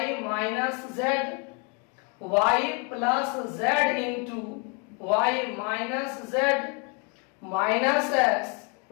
minus Z, y plus Z into Y minus Z minus X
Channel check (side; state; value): right; quieter; 33.4 dB